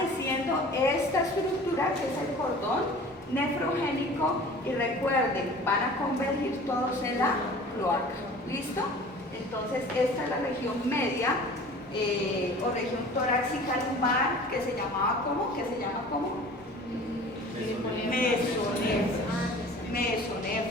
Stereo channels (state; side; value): normal; both; correlation 0.44